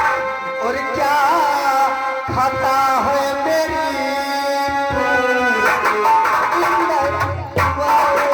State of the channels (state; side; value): identical; both; correlation 1.00